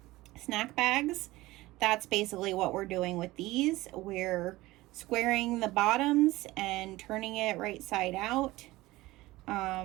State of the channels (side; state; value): left; quieter; 18.8 dB